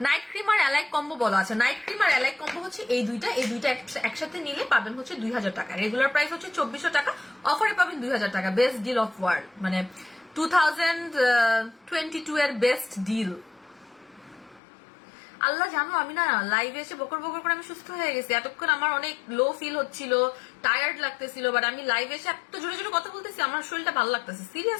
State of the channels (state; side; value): drops out; right; at 14.6 s